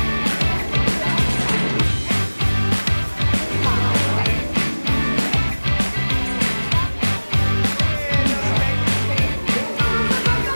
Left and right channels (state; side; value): inverted; both; correlation -1.00